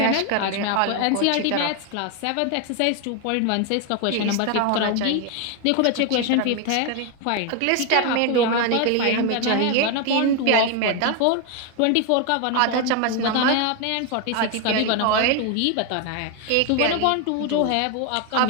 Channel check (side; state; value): both; different; correlation 0.01